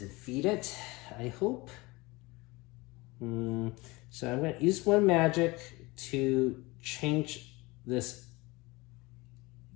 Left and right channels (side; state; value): right; quieter; 23.1 dB